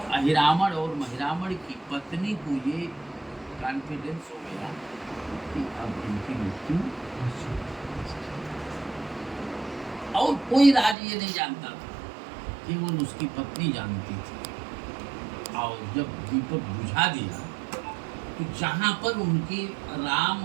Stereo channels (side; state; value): left; drops out; at 11.0 s